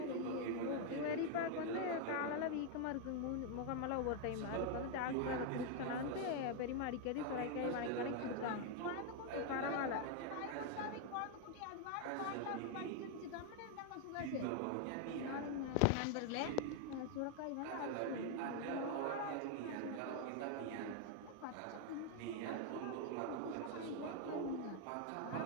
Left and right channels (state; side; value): different; both; correlation 0.00